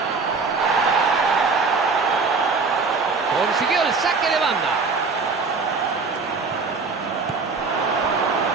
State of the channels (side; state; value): left; quieter; 4.5 dB